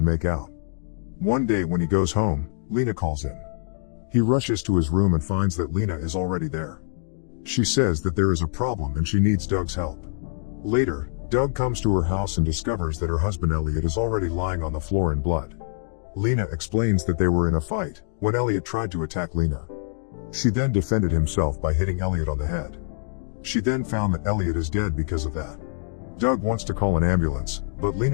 make out. One day when he goes home, Lena calls him. He rushes to his room and finds that Lena is already there. She says that there is a problem and she needs Doug's help. Later, Doug comes to her house and discovers that her husband Elliot is already lying on the floor in blood. Lena explains that they were in a fight when Elliot tried to attack Lena. She then defended himself by hitting Elliot on the head. She then found that Elliot is dead because of that. Doug wants to call an ambulance, but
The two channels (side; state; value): right; silent; 62 dB below the other